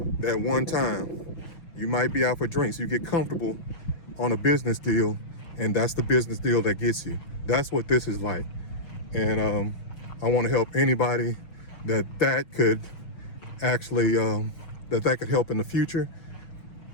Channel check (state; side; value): late; right; 6.0 ms